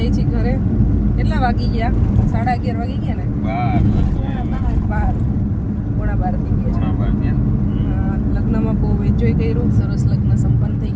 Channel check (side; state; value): both; identical; correlation 1.00